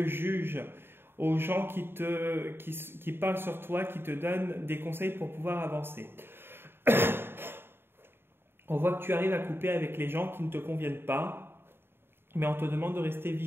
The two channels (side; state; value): left; late; 0.11 ms